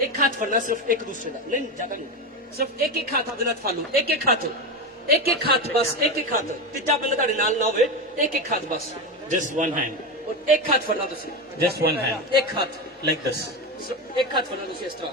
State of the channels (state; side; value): normal; both; correlation 0.17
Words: ਇੱਕ ਹੱਥ ਫੜਨਾ, ਸਿਰਫ ਇੱਕ ਦੂਸਰੇ ਦਾ ਨਹੀਂ, ਜ਼ਿਆਦਾ ਨਹੀਂ, ਸਿਰਫ ਇੱਕ ਹੱਥ ਆਪਦੇ ਨਾਲ ਫੜ ਲਓ। ਇੱਕ ਹੱਥ ਬਸ, ਇੱਕ ਹੱਥ। ਤੀਜਾ ਬੰਦਾ ਤੁਹਾਡੇ ਨਾਲ ਨਾ ਹੋਵੇ, ਇੱਕ ਹੱਥ ਬਸ। Just one hand. ਔਰ ਇੱਕ ਹੱਥ ਫੜਨਾ ਤੁਸੀਂ, Just one hand. ਇੱਕ ਹੱਥ, Like this. ਸਿਰਫ ਇੱਕ ਹੱਥ ਫੜਨਾ ਤੁਸੀਂ ਇਸ ਤਰ੍ਹਾਂ,